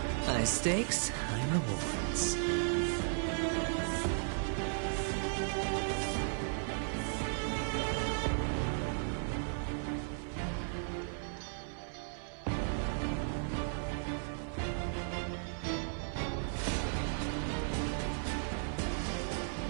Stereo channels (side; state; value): left; silent; 54 dB below the other